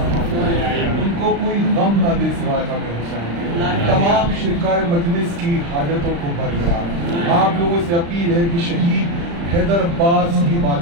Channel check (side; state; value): left; late; 35 ms